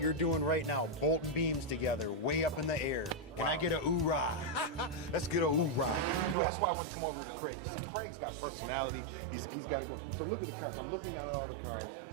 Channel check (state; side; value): drops out; left; at 6.4 s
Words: doing right now, bolting beams together, way up in the air. Can I get a oorah? Let's get a oorah. That's why I wanted to come over to Craig, because see, Craig's got personality. He's got to go. So look at the cars. I'm looking down at all the cars,